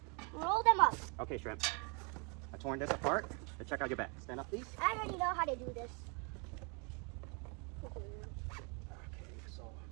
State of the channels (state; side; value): quieter; left; 34.1 dB